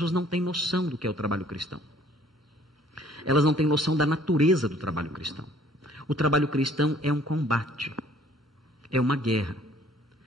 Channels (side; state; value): both; normal; correlation 0.58